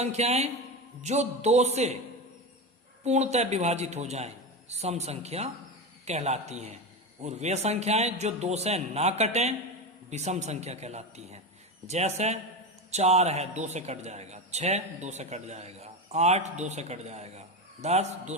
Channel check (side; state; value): both; normal; correlation 0.19